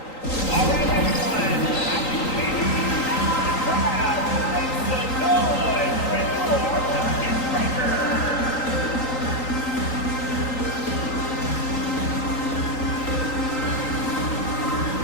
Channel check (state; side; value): late; right; 3.9 ms